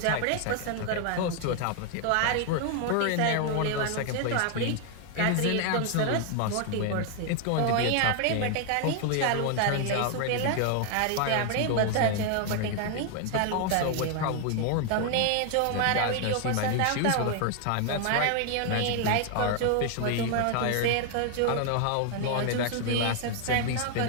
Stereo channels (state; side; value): different; both; correlation 0.00